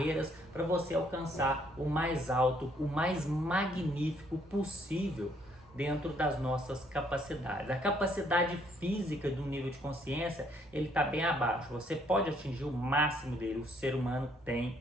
para você alcançar o mais alto, o mais magnífico possível dentro das nossas capacidades. A capacidade física do nível de consciência, ele está bem abaixo. Você pode atingir o máximo dele. O ser humano tem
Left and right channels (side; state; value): both; normal; correlation 0.67